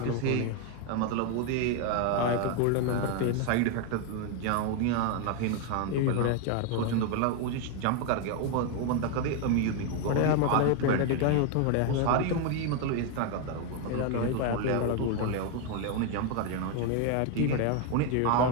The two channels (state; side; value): different; both; correlation 0.01